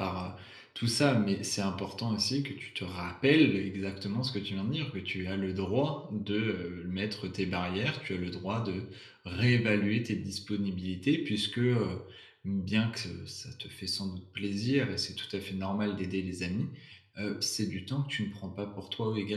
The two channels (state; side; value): identical; both; correlation 1.00